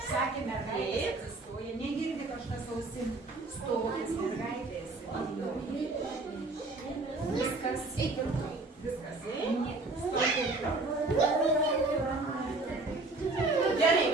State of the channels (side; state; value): left; quieter; 3.3 dB